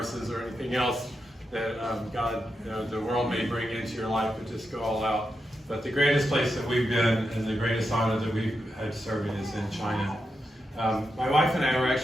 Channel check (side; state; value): both; normal; correlation 0.87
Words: or anything else that God, the world may bring into your life, but just go all out. But the greatest place that we've been and the greatest honor that we've had serving is in China. My wife and I were